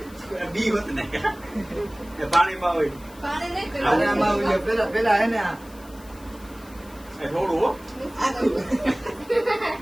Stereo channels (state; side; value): noise; left; hiss, 23 dB below the sound